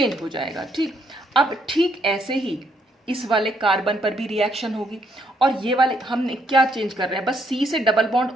हो जाएगा। ठीक, अब ठीक ऐसे ही इस वाले कार्बन पर भी रिएक्शन होगी, और ये वाले हमने क्या चेंज कर रहे हैं, बस C से डबल बॉन्ड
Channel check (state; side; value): normal; both; correlation 0.73